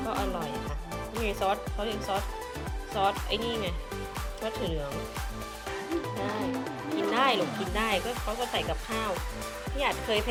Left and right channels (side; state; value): both; identical; correlation 1.00